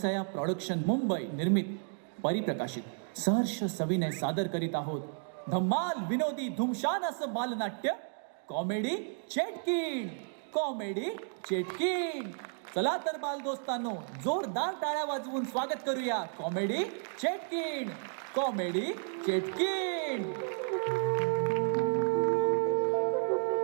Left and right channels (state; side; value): silent; left; 56 dB below the other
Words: प्रोडक्शन मुंबई निर्मित परिप्रकाशित सहर्ष सविनय सादर करीत आहोत धम्माल विनोदी धुमशान असं बालनाट्य कॉमेडी चेटकीण. कॉमेडी चेटकीण. चला तर बाल दोस्तांनो, जोरदार टाळ्या वाजवून स्वागत करूया कॉमेडी चेटकीण. कॉमेडी चेटकीण.